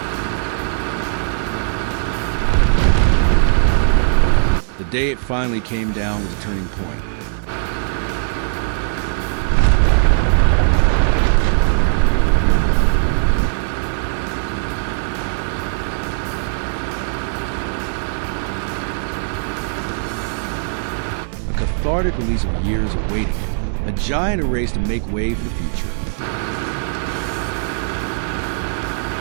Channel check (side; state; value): left; silent; digital silence